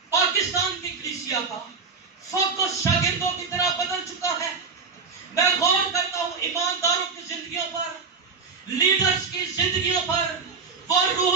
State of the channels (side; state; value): left; quieter; 5.0 dB